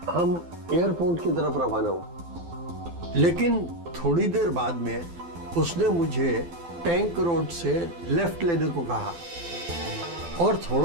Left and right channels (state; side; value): late; left; 12 ms